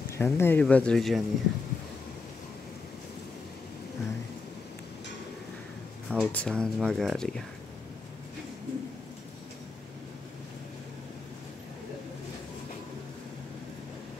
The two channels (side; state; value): right; quieter; 4.1 dB